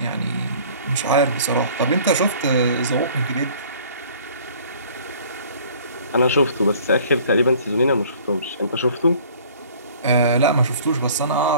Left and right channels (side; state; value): both; inverted; correlation -0.51